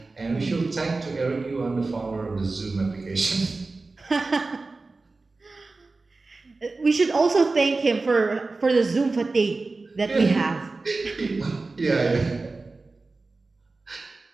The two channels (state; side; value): quieter; left; 3.6 dB